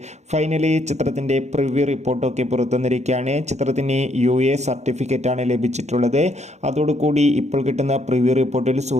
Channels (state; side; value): late; left; 0.33 ms